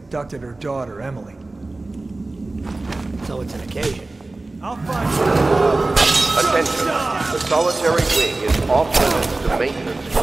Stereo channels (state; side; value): quieter; left; 3.1 dB